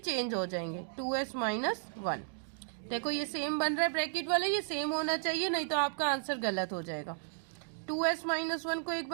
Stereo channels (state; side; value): silent; left; digital silence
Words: हो जाएंगे, 2s माइनस 1। देखो ये सेम बन रहा है ब्रैकेट वाला, ये सेम होना चाहिए, नहीं तो आपका आंसर गलत हो जाएगा। 2s माइनस 1 को एक